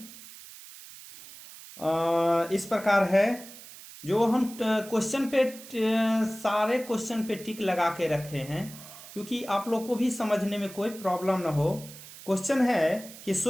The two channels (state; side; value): noise; right; hiss, 16 dB below the sound